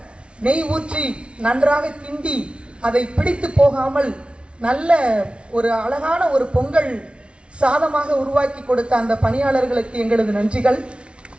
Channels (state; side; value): late; left; 0.059 ms